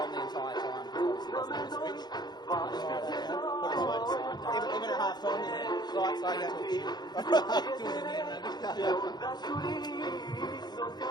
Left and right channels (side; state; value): right; late; 0.20 ms